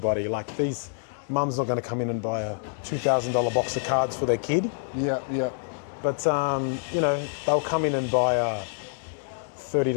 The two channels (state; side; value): silent; right; digital silence